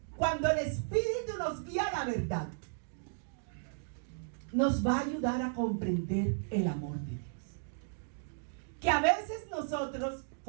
cuando el Espíritu nos guía a la verdad, nos va a ayudar a comprender el amor de Dios. Que a veces nosotros,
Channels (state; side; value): silent; left; digital silence